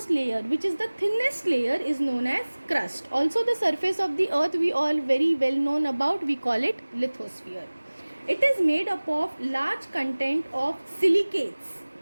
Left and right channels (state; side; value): inverted; both; correlation -1.00